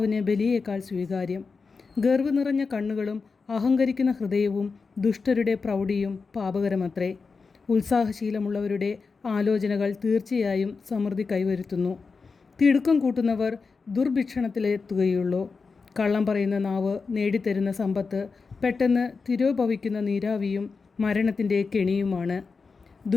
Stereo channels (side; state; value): right; quieter; 4.7 dB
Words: ബലിയേക്കാൾ സ്വീകാര്യം. ഗർവ് നിറഞ്ഞ കണ്ണുകളും അഹങ്കരിക്കുന്ന ഹൃദയവും ദുഷ്ടരുടെ പ്രൗഢിയും പാപകരമത്രേ. ഉത്സാഹശീലമുള്ളവരുടെ ആലോചനകൾ തീർച്ചയായും സമൃദ്ധി കൈവരുത്തുന്നു. തിടുക്കം കൂട്ടുന്നവർ ദുർഭിക്ഷണത്തിലെത്തുകയുള്ളൂ. കള്ളം പറയുന്ന നാവ് നേടിത്തരുന്ന സമ്പത്ത് പെട്ടെന്ന് തിരോഭവിക്കുന്ന നീരാവിയും മരണത്തിൻ്റെ കെണിയുമാണ്.